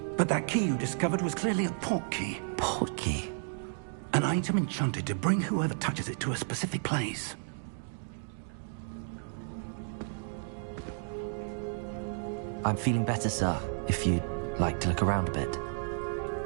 But that key you discovered was clearly a portkey. Portkey? An item enchanted to bring whoever touches it to a specific place. I'm feeling better, sir, if you'd like to look around a bit.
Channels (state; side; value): silent; left; digital silence